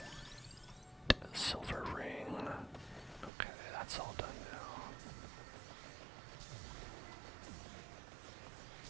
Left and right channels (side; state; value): left; drops out; at 3.3 s